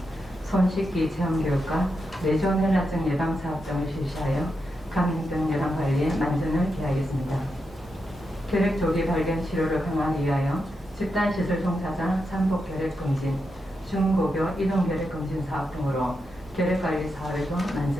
손 씻기 체험 교육과 뇌졸 혈압증 예방 사업 등을 실시하여 감염병 예방 관리에 만전을 기하겠습니다. 결핵 조기 발견 치료를 강화하기 위하여 집단시설 종사자 잠복 결핵 검진, 중고교 이동 결핵 검진 사업 등으로 결핵 관리 사업에도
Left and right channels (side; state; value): both; normal; correlation 0.86